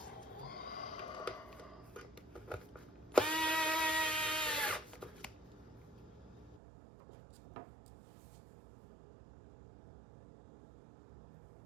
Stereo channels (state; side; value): drops out; left; at 6.6 s